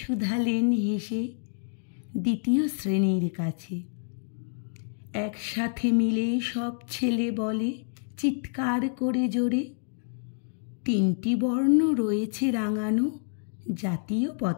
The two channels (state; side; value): silent; right; digital silence